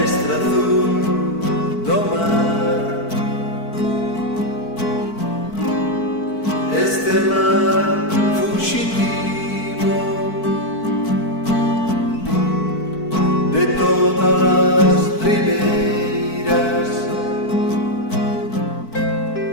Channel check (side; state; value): right; late; 4.5 ms